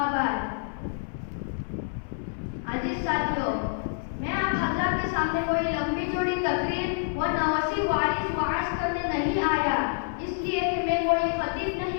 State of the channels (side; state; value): right; silent; 60 dB below the other